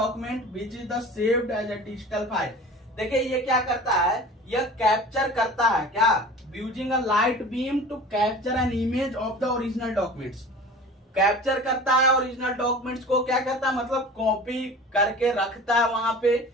which is the saved as a digital file. देखिए ये क्या करता है? यह कैप्चर करता है। क्या? Using a light beam to capture an image of the original documents. Capture करता है ओरिजिनल डॉक्यूमेंट्स को, क्या करता है? मतलब कॉपी करके रखता है वहां पे,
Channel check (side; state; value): both; normal; correlation 0.39